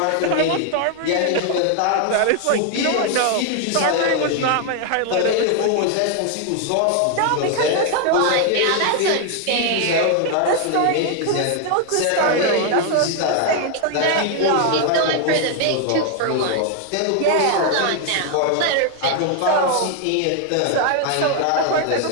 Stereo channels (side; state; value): both; different; correlation 0.00